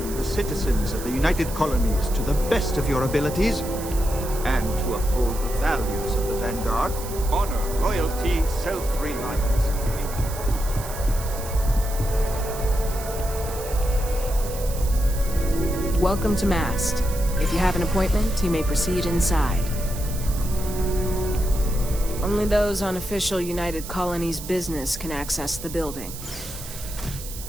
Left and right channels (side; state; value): right; noise; hiss, 12 dB below the sound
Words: Citizens of the United Colonies to the best of your abilities, and to uphold the values of the Vanguard, honor, loyalty, self-reliance. Welcome to Mast. If you have an appointment, you may proceed inside. Only those on official United Colonies business can access the building.